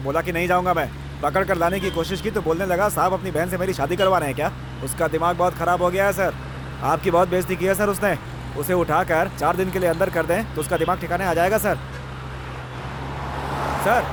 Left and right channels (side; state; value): both; identical; correlation 1.00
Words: कि नहीं जाऊंगा मैं। पकड़ कर लाने की कोशिश की तो बोलने लगा साहब अपनी बहन से मेरी शादी करवा रहे हैं क्या? उसका दिमाग बहुत खराब हो गया है सर, आपकी बहुत बेइज्जती की है सर उसने। उसे उठाकर 4 दिन के लिए अंदर कर दें तो उसका दिमाग ठिकाने आ जाएगा सर। सर,